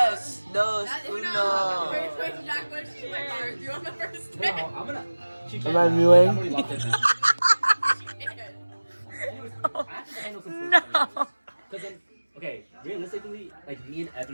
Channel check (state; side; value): inverted; both; correlation -1.00